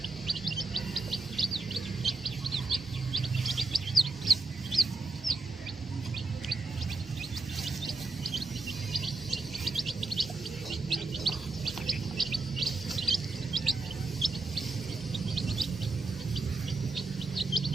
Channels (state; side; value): quieter; left; 3.4 dB